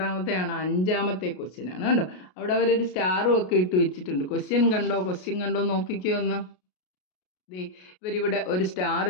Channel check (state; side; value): late; right; 33 ms